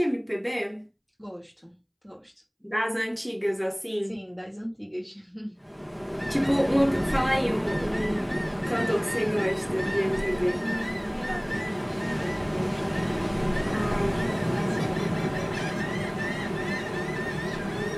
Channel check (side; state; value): both; identical; correlation 1.00